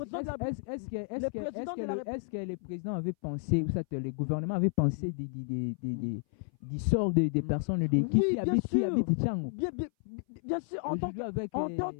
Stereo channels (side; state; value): right; silent; 57 dB below the other